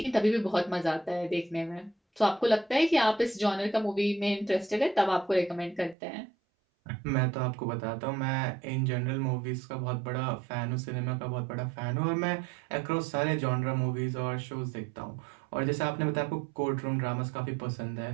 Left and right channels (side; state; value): left; drops out; at 6.0 s